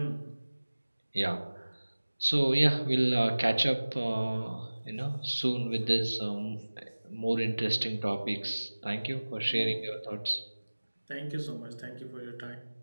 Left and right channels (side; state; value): both; inverted; correlation -1.00